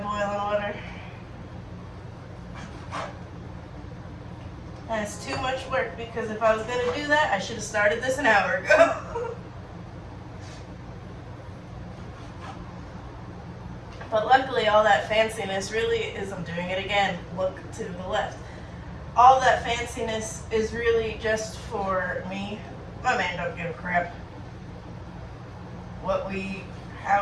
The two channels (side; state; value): both; identical; correlation 1.00